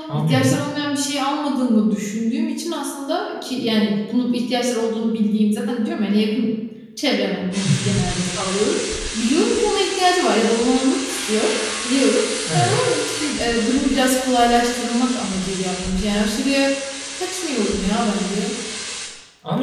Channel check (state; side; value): identical; both; correlation 1.00